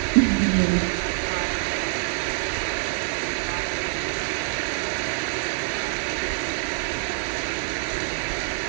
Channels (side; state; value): left; silent; 61 dB below the other